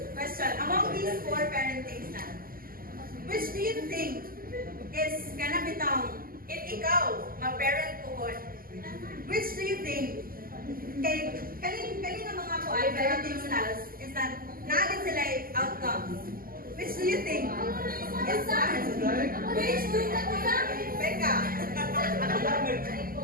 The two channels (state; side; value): late; left; 0.42 ms